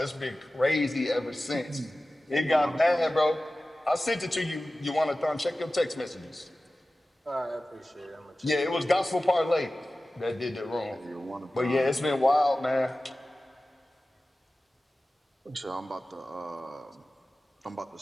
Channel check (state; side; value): normal; both; correlation 0.96